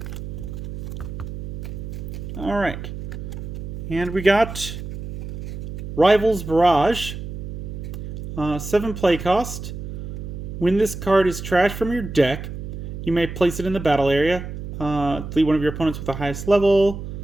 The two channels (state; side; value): noise; right; hum, 8 dB below the sound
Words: Alright. And we got Rivals Barrage. 7 play cost. When this card is trashed from your deck, you may place it in the battle area. Delete one of your opponents with the highest level.